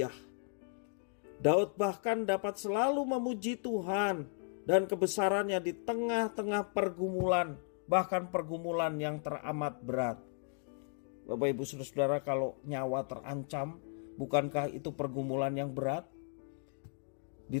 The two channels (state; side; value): silent; right; 54 dB below the other